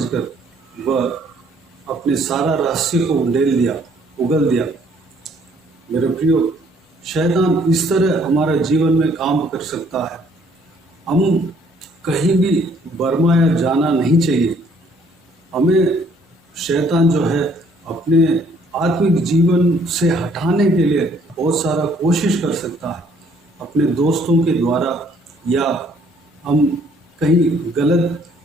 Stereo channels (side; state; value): both; normal; correlation 0.62